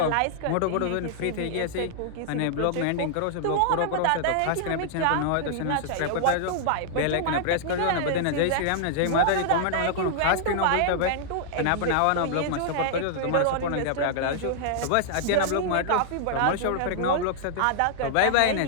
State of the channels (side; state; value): both; different; correlation -0.01